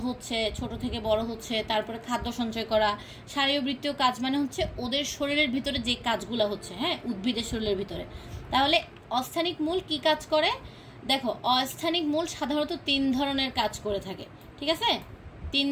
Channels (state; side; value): identical; both; correlation 1.00